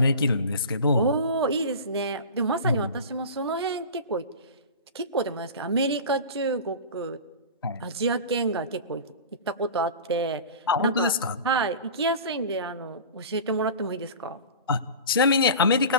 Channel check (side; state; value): both; inverted; correlation -0.34